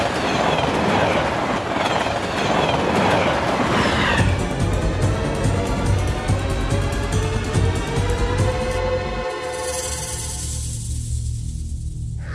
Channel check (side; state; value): both; identical; correlation 1.00